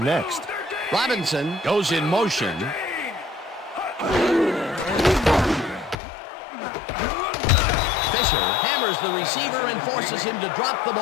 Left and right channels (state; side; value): drops out; right; at 6.0 s